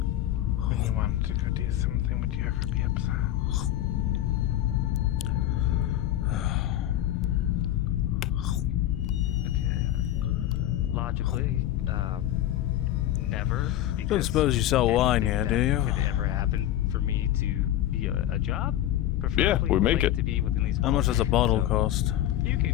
when you wanted to go do something, would you ever be upset? Logically, never. Don't suppose you sell wine yet, do you? Could it ever happen for me to be a job? Yeah, we make it. To be within these How much does a bottle cost? You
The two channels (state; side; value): quieter; right; 12.9 dB